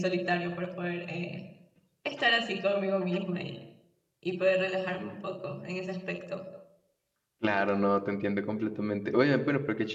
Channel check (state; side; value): identical; both; correlation 1.00